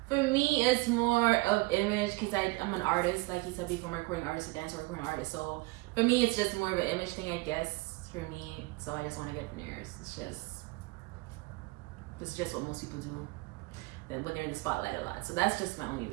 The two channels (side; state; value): left; quieter; 23.9 dB